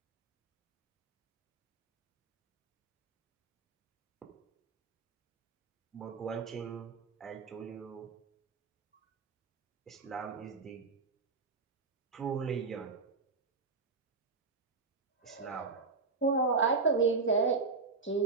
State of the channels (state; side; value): quieter; left; 4.4 dB